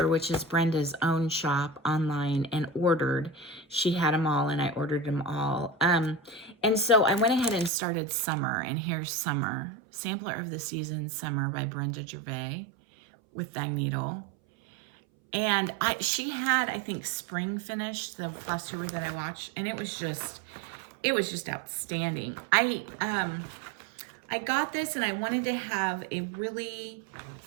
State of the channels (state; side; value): drops out; left; at 7.7 s